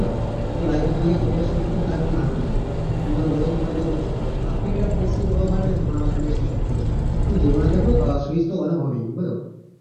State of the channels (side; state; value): both; identical; correlation 1.00